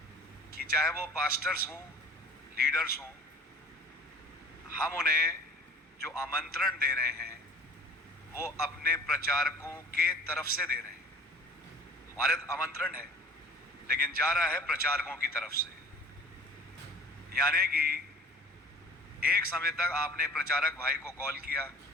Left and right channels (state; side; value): normal; both; correlation 0.46